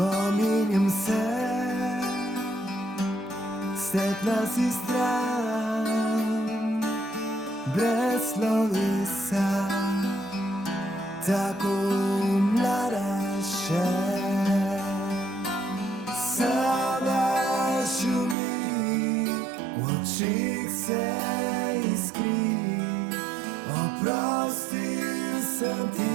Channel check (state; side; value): drops out; left; at 18.4 s